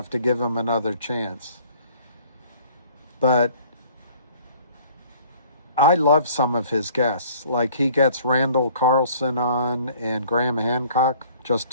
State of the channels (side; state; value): both; inverted; correlation -0.54